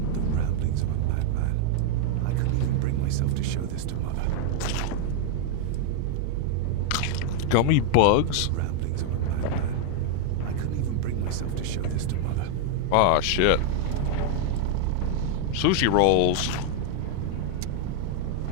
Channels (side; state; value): both; different; correlation -0.01